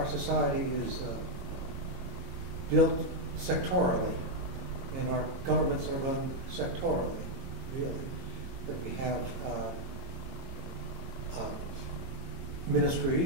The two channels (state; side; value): late; left; 22 ms